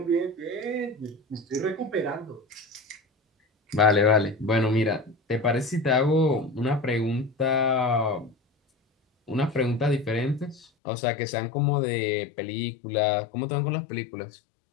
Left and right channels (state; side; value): drops out; right; at 10.7 s